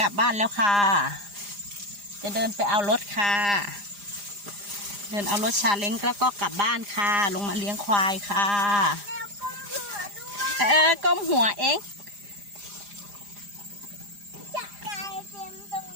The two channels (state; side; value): late; left; 4.9 ms